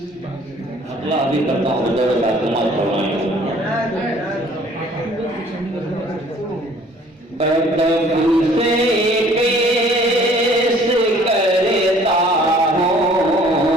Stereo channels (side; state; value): both; normal; correlation 0.55